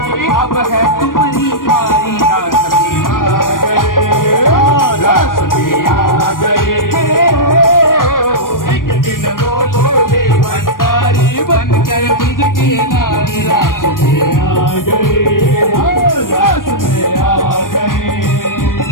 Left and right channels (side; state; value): right; late; 0.90 ms